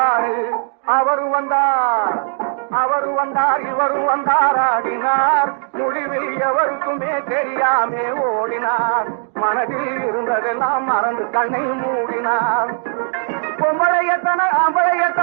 அவரும் வந்தார் இவரும் வந்தார் ஆடினார். முடிவில் எவருக்குமே தெரியாமே ஓடினார். மனதில் இருந்ததெல்லாம் மறந்து கண்ணை மூடினார். பொம்பளையத்தன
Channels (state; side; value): silent; left; 56 dB below the other